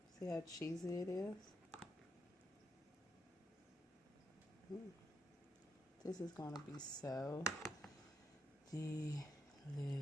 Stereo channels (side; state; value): both; normal; correlation 0.80